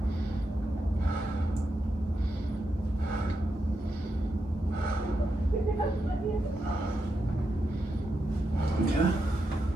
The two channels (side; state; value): both; normal; correlation 0.85